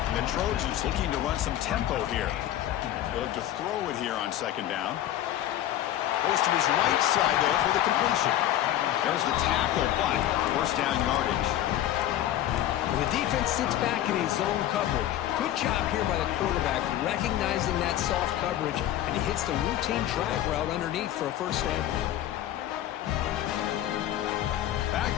The Trojans looking to run some tempo here. They'll look to throw it here on 2nd down. Goes to his right side there for the completion. There's the tackle, but first down yardage. The defense sits back in a zone coverage. Good job here by the quarterback, recognizing that soft coverage, and he hits the routine drag route underneath for a first down.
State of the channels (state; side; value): quieter; right; 12.6 dB